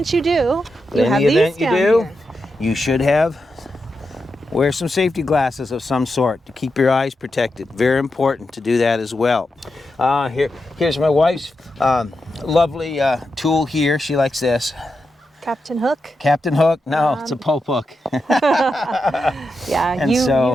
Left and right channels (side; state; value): both; normal; correlation 0.87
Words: you do, But you in have the these event you down do, here. you should wear some safety glasses of some sort to keep your eyes protected. Very important to do that as well. Here's my wife's lovely tool here. She likes this. Captain Hook. Captain Hook? No, it's a Pope hook. Yeah, And you so,